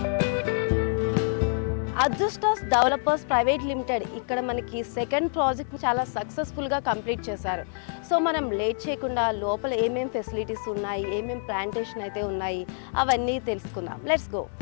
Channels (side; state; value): right; silent; 59 dB below the other